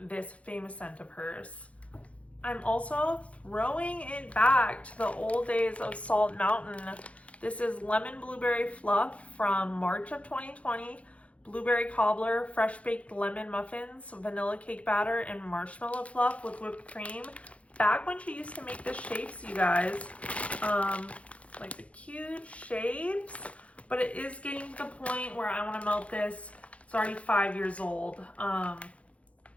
this famous scent of hers. I'm also throwing it back to the old days of Salt Mountain. This is lemon blueberry fluff from March of 2020. Blueberry cobbler, fresh baked lemon muffins, vanilla cake batter, and marshmallow fluff with whipped cream. Back when she used to make the shapes, you guys, like the cute shapes, but it is getting to the point where I want to melt this. It's already 5 years old,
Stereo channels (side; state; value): right; late; 0.064 ms